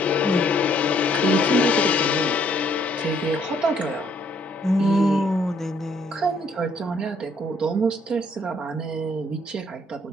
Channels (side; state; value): both; normal; correlation 0.66